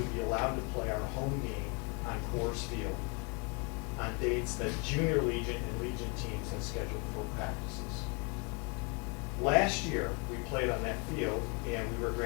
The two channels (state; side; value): quieter; right; 32.2 dB